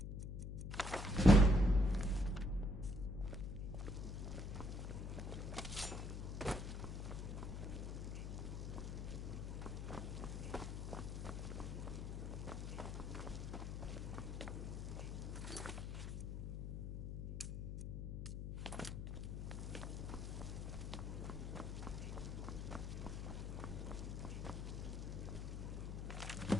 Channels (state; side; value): noise; left; hum, 4 dB below the sound